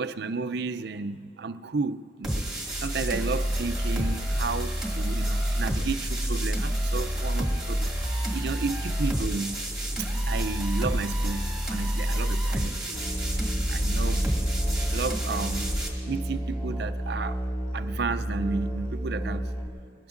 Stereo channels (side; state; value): both; normal; correlation 0.77